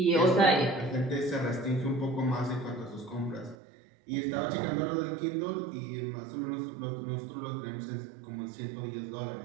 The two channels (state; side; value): drops out; left; at 3.6 s